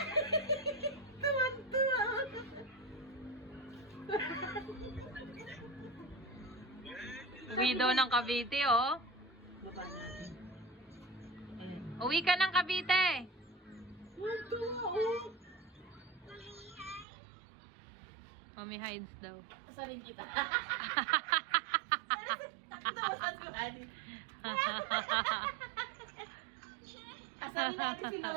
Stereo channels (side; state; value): left; drops out; at 17.1 s